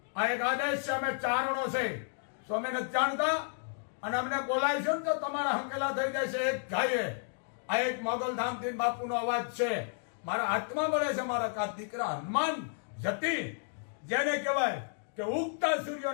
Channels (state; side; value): silent; right; digital silence